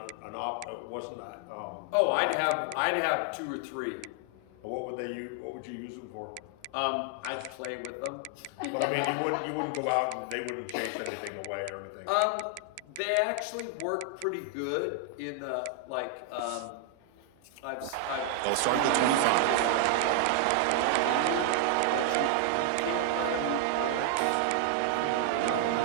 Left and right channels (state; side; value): different; both; correlation 0.00